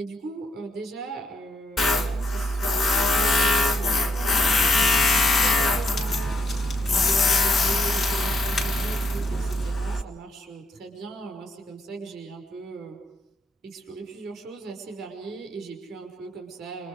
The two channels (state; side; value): normal; both; correlation 0.76